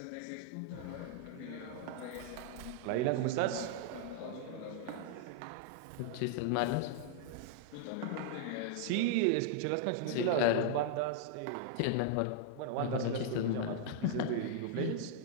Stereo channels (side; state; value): both; different; correlation 0.00